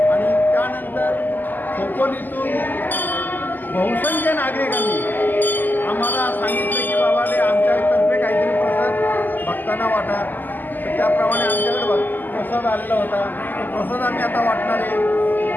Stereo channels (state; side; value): late; right; 0.087 ms